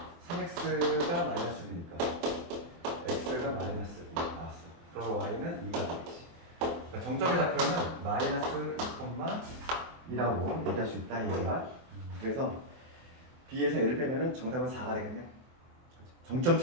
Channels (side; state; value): left; late; 24 ms